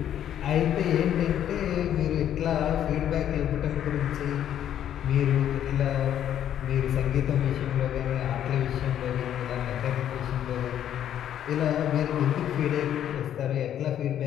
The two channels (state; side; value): quieter; right; 10.5 dB